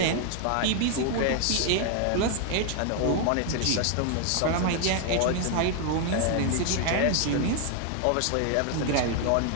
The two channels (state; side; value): different; both; correlation 0.01